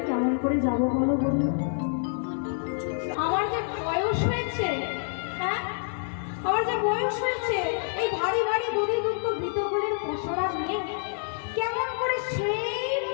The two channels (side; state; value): right; silent; digital silence